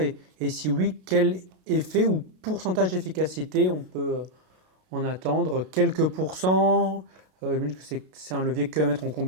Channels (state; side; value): late; left; 32 ms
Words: si oui, quel effet ou pourcentage d'efficacité on peut en attendre? Quelques pourcents? J'imagine que c'est un levier que à mettre en